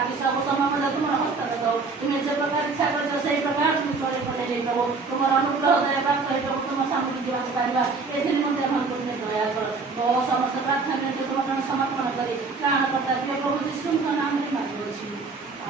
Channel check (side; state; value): left; quieter; 4.3 dB